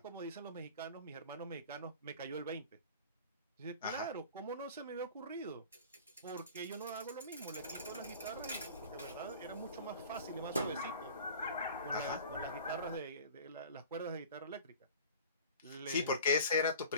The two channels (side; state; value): both; inverted; correlation -0.42